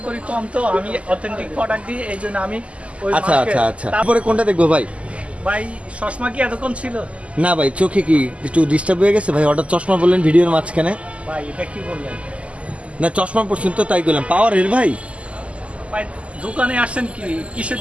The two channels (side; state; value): left; late; 0.060 ms